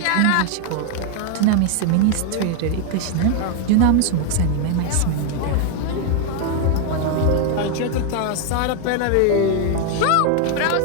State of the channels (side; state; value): both; different; correlation 0.01